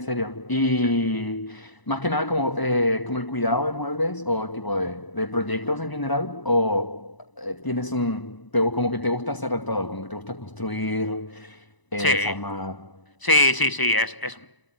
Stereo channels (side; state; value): right; late; 1.0 ms